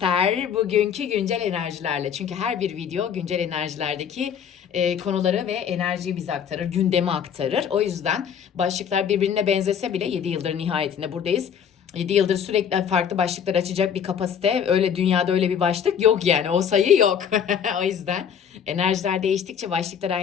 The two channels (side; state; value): right; quieter; 7.9 dB